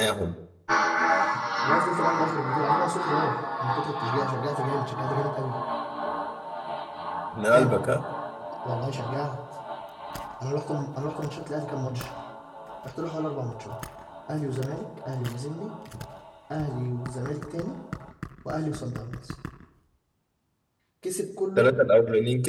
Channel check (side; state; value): both; identical; correlation 1.00